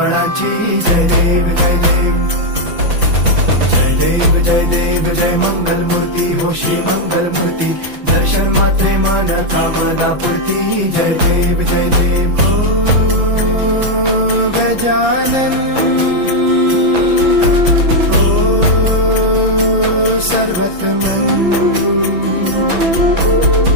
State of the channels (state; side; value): late; left; 6.0 ms